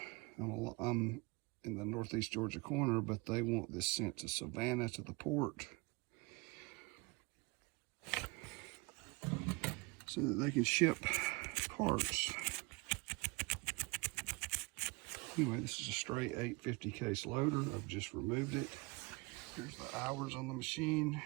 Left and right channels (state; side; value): quieter; left; 26.9 dB